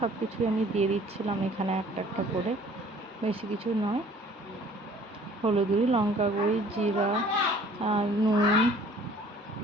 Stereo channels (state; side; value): normal; both; correlation 0.53